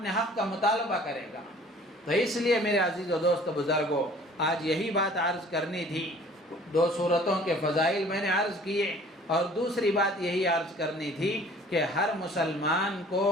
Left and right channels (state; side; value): normal; both; correlation 0.51